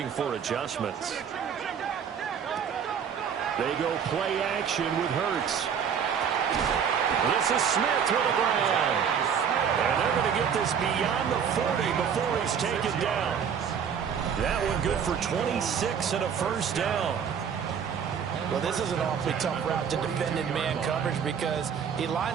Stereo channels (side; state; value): left; quieter; 7.5 dB